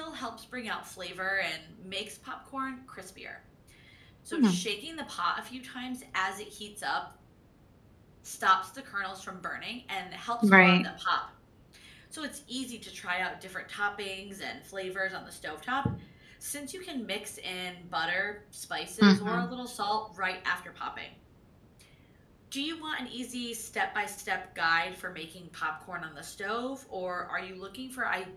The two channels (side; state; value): both; identical; correlation 1.00